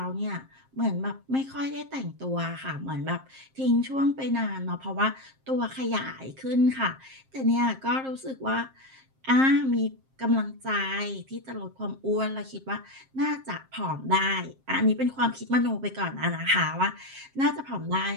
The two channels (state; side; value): late; left; 7.5 ms